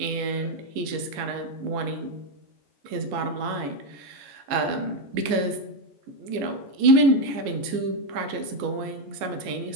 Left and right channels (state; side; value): late; left; 14 ms